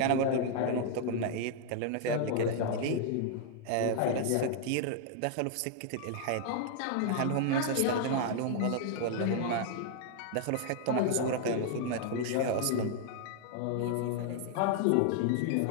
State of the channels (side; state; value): both; different; correlation 0.00